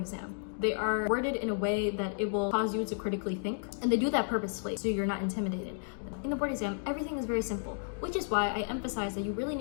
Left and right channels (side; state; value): right; silent; digital silence